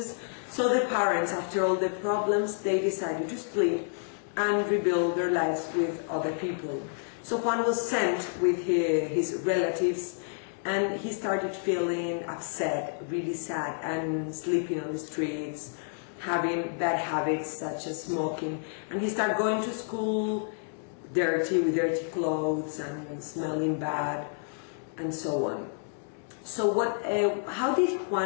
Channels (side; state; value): right; silent; 58 dB below the other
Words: so the parents, after all the problems, they decided to split and rebuild their lives with other people. So Juan was sent with his relatives, and he started feeling upset, really sad, and sleeping on the streets, having bad habits such as smoking, and he started going to school dirty, with dirty clothes and smelling bad, and so on. So how did